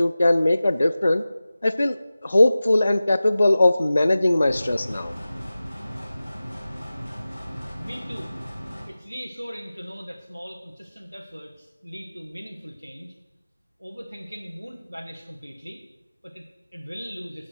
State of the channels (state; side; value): inverted; both; correlation -0.96